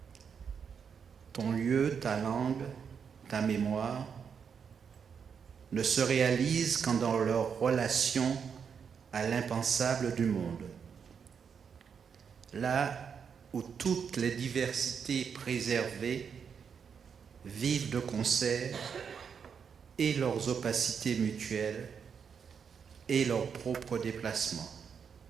Ton lieu, ta langue, ta mémoire ne se réalisent qu'en dans leur relation à l'impensable du monde. Là où toutes les diversités préservées vivent de concert et leurs opacités mutuelles et leurs propres déplacements.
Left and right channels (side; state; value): left; quieter; 6.7 dB